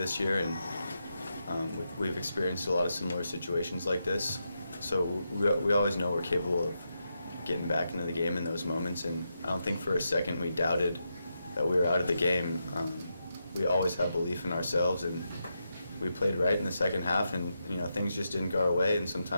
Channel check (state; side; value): inverted; both; correlation -0.85